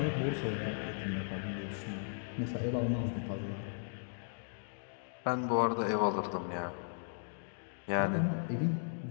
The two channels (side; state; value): right; silent; digital silence